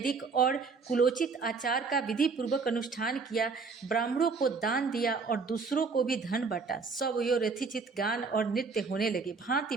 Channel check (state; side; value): quieter; left; 4.7 dB